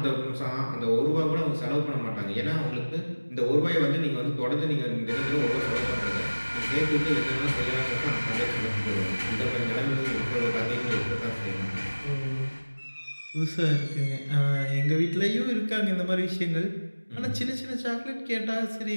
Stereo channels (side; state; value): both; inverted; correlation -1.00